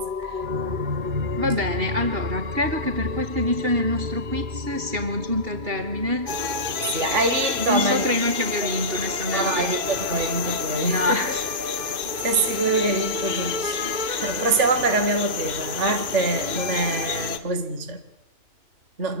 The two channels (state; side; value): late; left; 2.6 ms